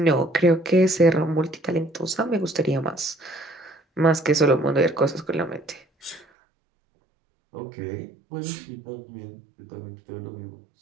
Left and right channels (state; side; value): drops out; left; at 6.2 s